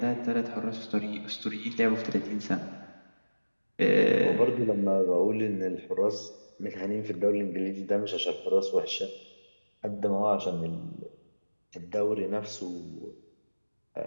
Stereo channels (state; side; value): inverted; both; correlation -1.00